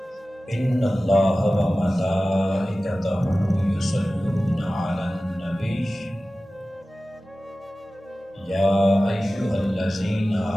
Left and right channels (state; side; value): normal; both; correlation 0.96